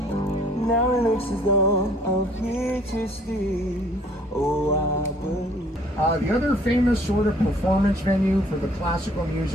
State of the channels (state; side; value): normal; both; correlation 0.57